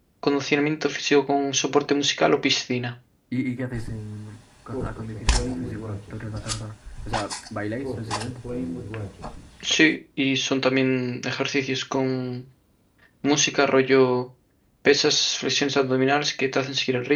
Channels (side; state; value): both; identical; correlation 1.00